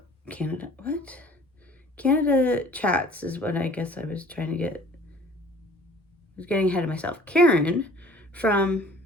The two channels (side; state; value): both; normal; correlation 0.50